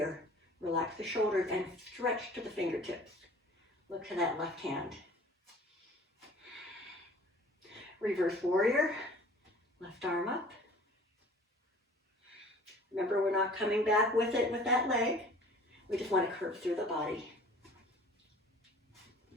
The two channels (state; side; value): normal; both; correlation 0.48